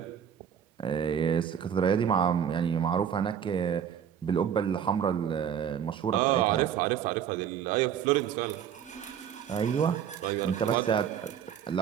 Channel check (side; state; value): left; quieter; 8.7 dB